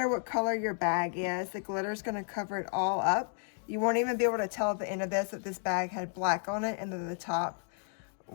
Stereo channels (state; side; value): silent; right; 56 dB below the other